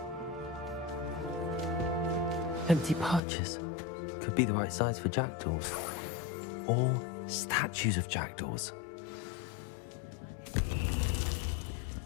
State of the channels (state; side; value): drops out; right; at 3.2 s